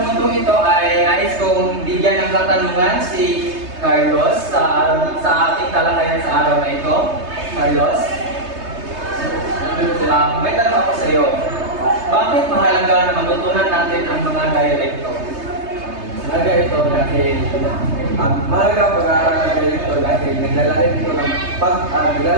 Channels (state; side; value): late; left; 3.3 ms